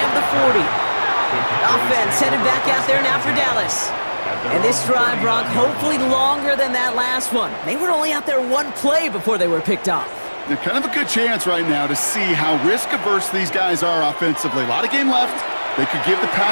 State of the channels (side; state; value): both; inverted; correlation -1.00